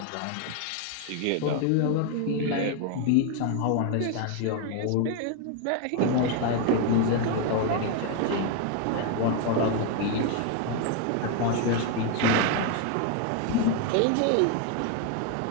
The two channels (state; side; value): different; both; correlation 0.01